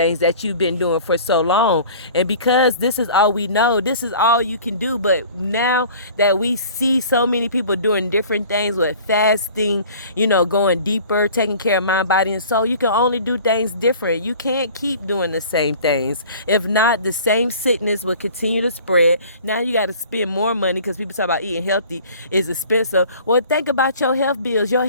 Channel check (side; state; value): both; inverted; correlation -0.46